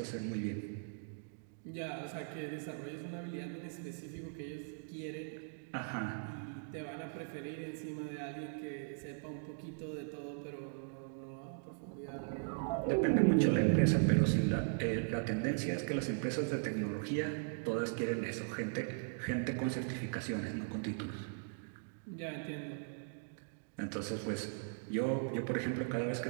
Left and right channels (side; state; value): left; silent; digital silence